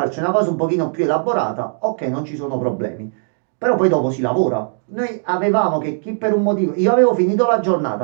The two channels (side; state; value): left; silent; digital silence